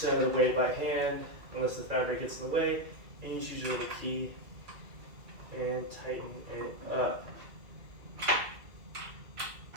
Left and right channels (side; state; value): left; late; 2.4 ms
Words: of the way by hand, unless the fabric gets in the way. And you use your little key and tighten it up.